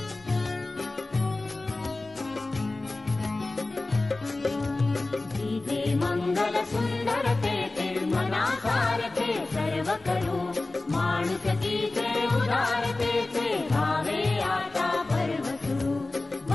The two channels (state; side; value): quieter; right; 3.1 dB